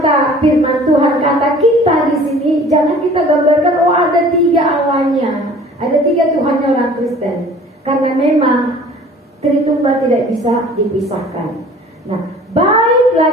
firman Tuhan, kata kita di sini jangan kita gambarkan ada 3 Allahnya, ada 3 Tuhannya orang Kristen. Karena memang Tritunggal tidak bisa dipisahkan. Nah,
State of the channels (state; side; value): normal; both; correlation 0.48